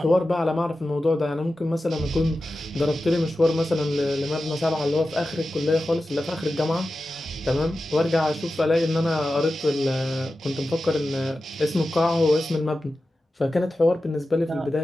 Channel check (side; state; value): both; normal; correlation 0.93